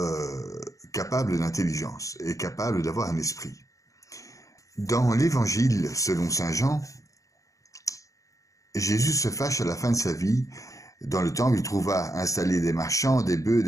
capable d'intelligence et capable d'avoir un esprit. Dans l'Évangile, selon saint Jean, Jésus se fâche à la fin de sa vie. Dans le temple, il trouva installés des marchands, des bœufs,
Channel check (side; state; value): right; late; 0.16 ms